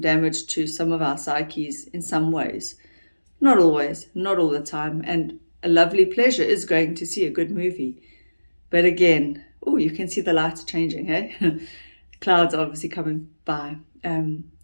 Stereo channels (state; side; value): inverted; both; correlation -1.00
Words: to some of our psyches in some ways. Not always, not all the time. And a lovely pleasure is going to see a good movie. But again, you can see the lights changing, hey? Clouds obviously coming by.